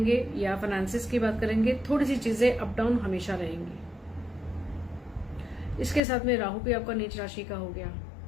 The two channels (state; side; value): drops out; right; at 6.0 s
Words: या फाइनेंसिस की बात करेंगे, थोड़ी सी चीजें अप डाउन हमेशा रहेंगी। इसके साथ में राहु भी आपका नीच राशि का हो गया।